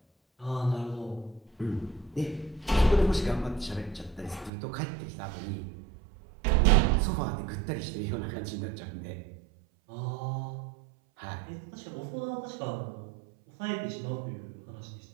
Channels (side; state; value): left; drops out; at 4.5 s